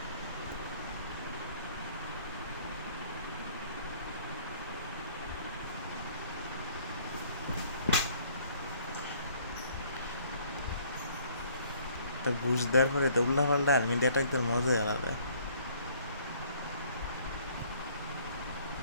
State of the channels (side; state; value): both; inverted; correlation -0.59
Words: তা ঘুষ দেওয়ার পরে তো উল্টা পাল্টা আর্মি দিয়ে অ্যাটাক দেওয়ার মজাই আলাদা।